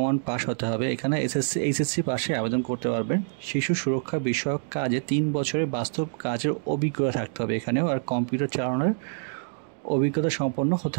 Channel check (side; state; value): left; silent; digital silence